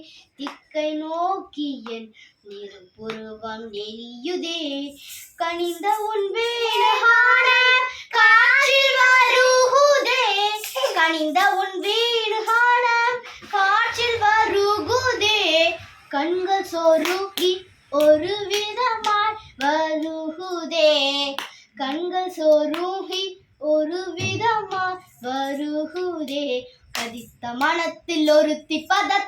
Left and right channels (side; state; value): both; identical; correlation 1.00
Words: திக்கை நோக்கிய நெருப்புருவம் எரியுதே கனிந்த உன் வீடுகாண காற்றில் வருகுதே கனிந்த உன் வீடுகாண காற்றில் வருகுதே கண்கள் சொருகி ஒரு விதமாய் வருகுதே கண்கள் சொருகி ஒரு விதமாய் வருகுதே கதித்த மனத்தில் ஒருத்தி